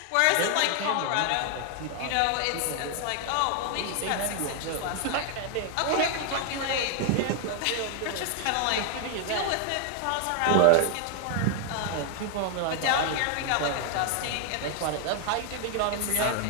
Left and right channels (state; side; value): different; both; correlation 0.00